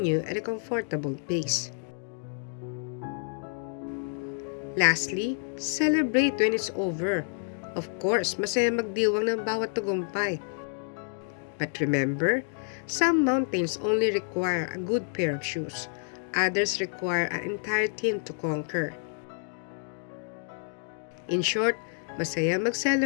at a comfortable pace. Lastly, celebrate when it's over. Of course, masaya magdiwang ng bawat tagumpay. But remember, some mountains only require a good pair of shoes. Others require an entire team to conquer. In short, masaya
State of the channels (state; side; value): silent; right; 59 dB below the other